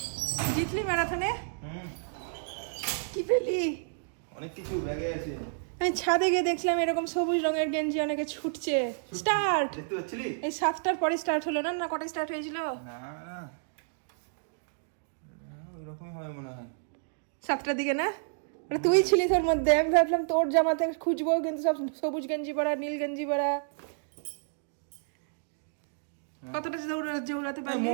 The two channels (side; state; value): left; silent; digital silence